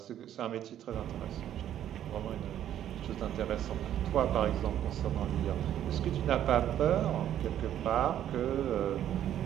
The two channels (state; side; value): quieter; left; 11.0 dB